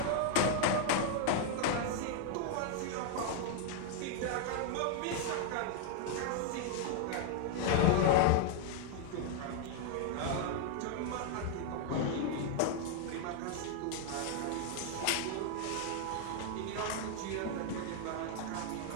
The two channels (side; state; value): both; different; correlation 0.00